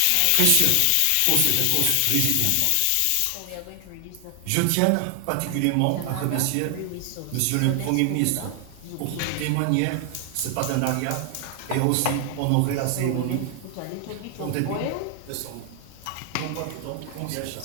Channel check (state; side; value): different; both; correlation 0.00